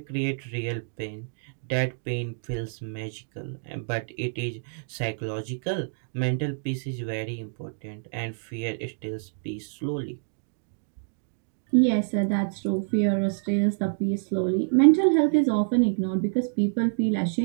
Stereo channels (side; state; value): left; silent; digital silence